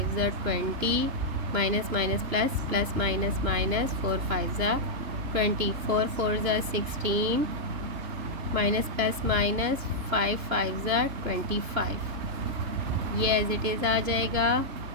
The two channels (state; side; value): late; left; 2.9 ms